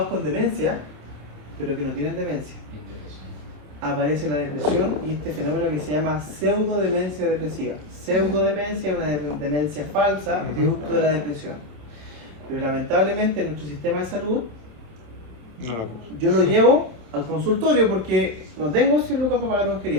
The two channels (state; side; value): late; left; 27 ms